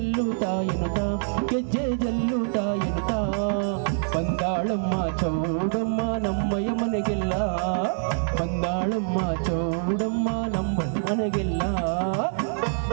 ಎನ್ನುತ್ತಾ ಗೆಜ್ಜೆ ಜಲ್ಲುತ್ತಾ ಎನ್ನುತ್ತಾ ಬಂದಾಳಮ್ಮ ಚೌಡಮ್ಮ ನಮ್ಮಯ್ಯ ಮನೆಗೆಲ್ಲ ಬಂದಾಳಮ್ಮ ಚೌಡಮ್ಮ ನಮ್ಮ ಮನೆಗೆಲ್ಲ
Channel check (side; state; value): left; silent; digital silence